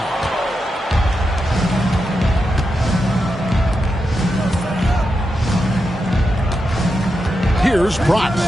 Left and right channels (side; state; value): both; normal; correlation 0.87